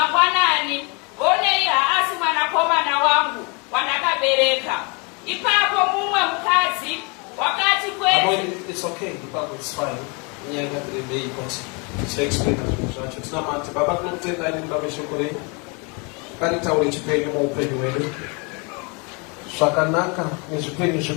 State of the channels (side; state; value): right; quieter; 31.8 dB